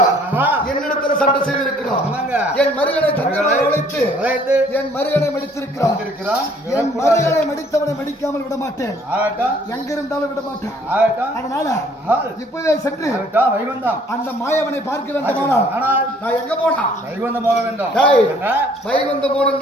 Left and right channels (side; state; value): both; normal; correlation 0.59